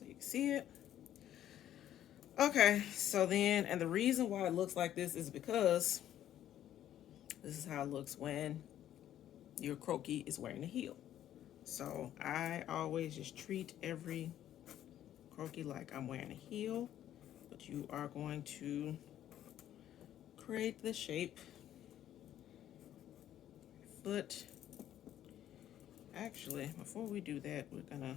you can see it. Okay, so then, and the reason why it looks like this is because this is how it looks when your croquis is wearing a heel. So I always just treat every croquis like I'm wearing a heel, but you are going to create the shape. Foot. Actually, before we do that, we're gonna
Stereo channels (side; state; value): right; quieter; 11.6 dB